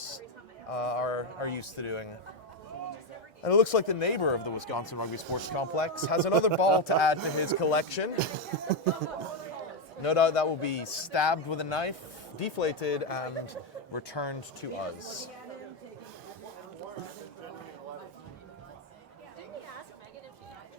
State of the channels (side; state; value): both; normal; correlation 0.06